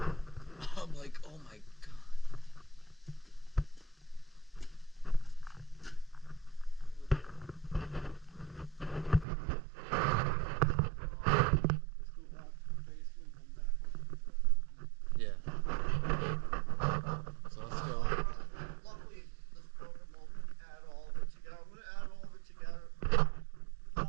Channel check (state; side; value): drops out; left; at 9.2 s